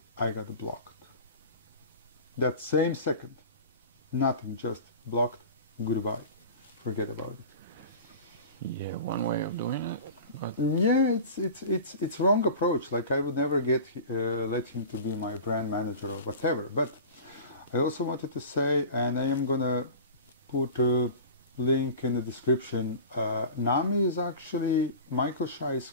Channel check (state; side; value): inverted; both; correlation -0.35